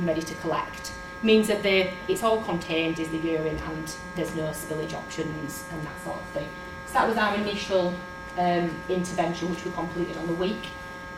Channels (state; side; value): identical; both; correlation 1.00